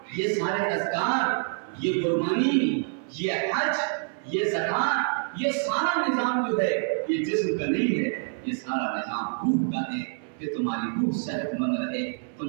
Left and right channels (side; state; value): left; silent; 60 dB below the other